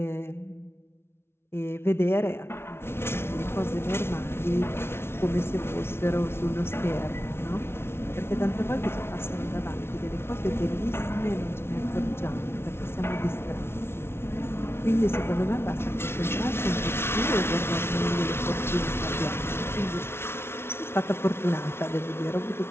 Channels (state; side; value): late; right; 0.12 ms